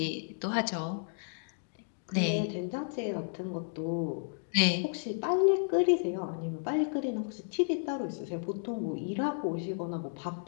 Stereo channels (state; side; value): silent; right; digital silence